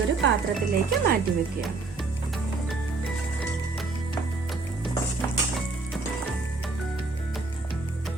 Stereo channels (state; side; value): quieter; left; 3.8 dB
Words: പാത്രത്തിലേക്ക് മാറ്റി വെക്കുകയാണ്.